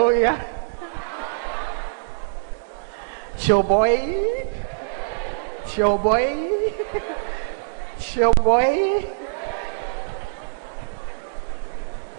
Chill boy. Chill boy. Chill boy.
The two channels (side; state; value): left; silent; digital silence